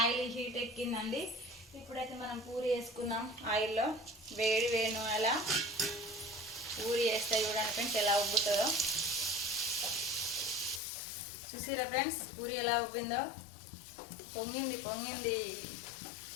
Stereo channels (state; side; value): drops out; right; at 10.8 s